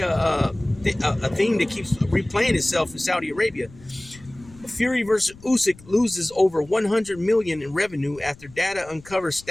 theme that keeps replaying itself in Saudi Arabia. Fury versus Usyk loses over 100 million in revenue after data uncovers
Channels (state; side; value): noise; left; rumble, 22 dB below the sound